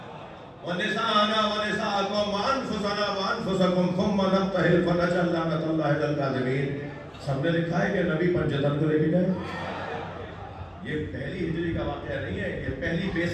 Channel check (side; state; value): both; identical; correlation 1.00